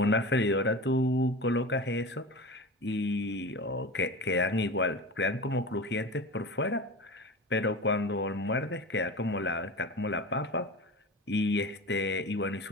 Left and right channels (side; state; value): both; normal; correlation 0.31